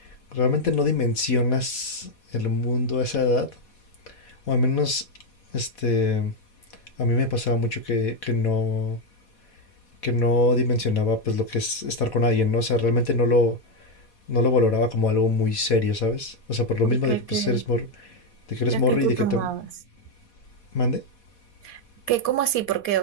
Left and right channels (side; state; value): right; late; 4.2 ms